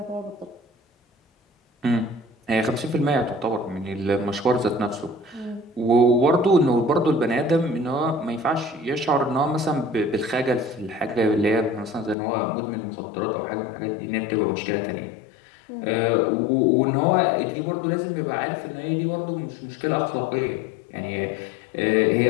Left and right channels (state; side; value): drops out; right; at 12.2 s